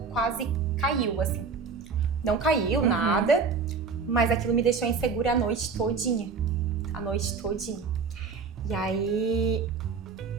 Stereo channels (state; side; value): quieter; left; 5.2 dB